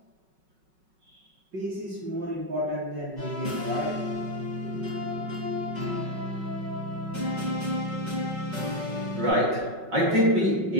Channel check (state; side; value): late; left; 5.4 ms